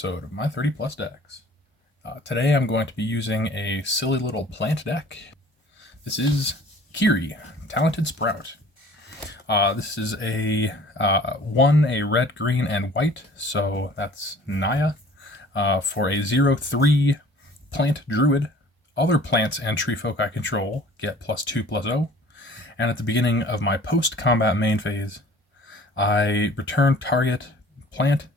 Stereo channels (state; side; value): normal; both; correlation 0.50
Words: of my 30 plus decks. Today I'm going to be using a silly little plant deck. This is Kirri, Talented Sprout. This is a red, green, and white, so that's Naya, for a 0/3 plant druid. Other plants and tree folk I control get +2/+0, and at the beginning of my post-combat main phase, I return target plant,